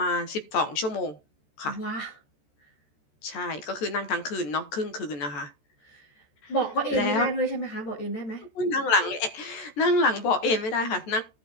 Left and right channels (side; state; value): right; late; 14 ms